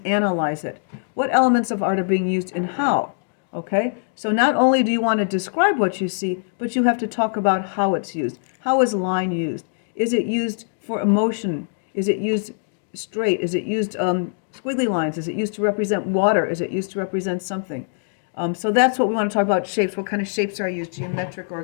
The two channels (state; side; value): silent; right; digital silence